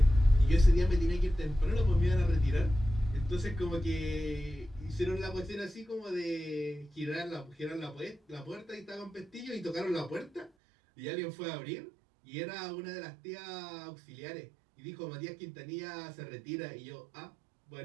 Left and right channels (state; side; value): drops out; left; at 10.5 s